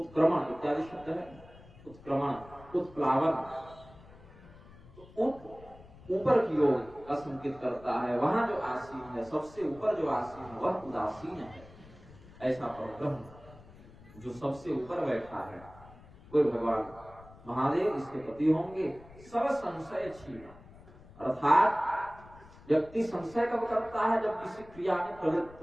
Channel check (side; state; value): left; noise; rumble, 21 dB below the sound